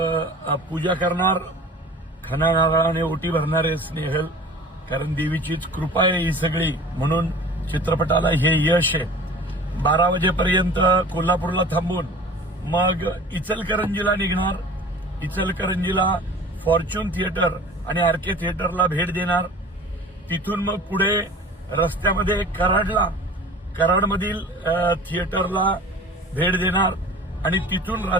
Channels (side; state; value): both; normal; correlation 0.42